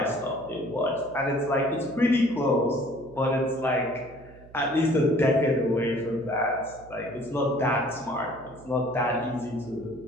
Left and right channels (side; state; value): right; noise; hum, 22 dB below the sound